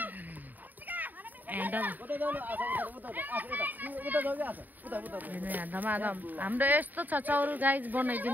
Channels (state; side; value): late; left; 0.086 ms